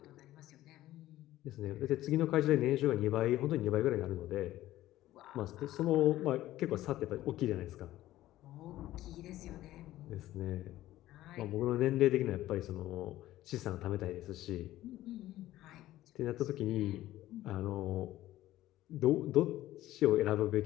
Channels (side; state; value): right; quieter; 14.9 dB